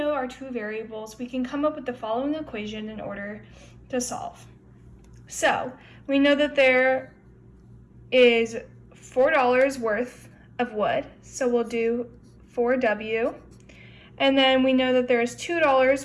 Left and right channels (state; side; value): identical; both; correlation 1.00